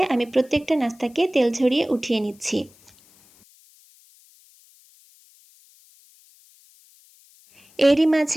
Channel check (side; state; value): left; noise; hiss, 29 dB below the sound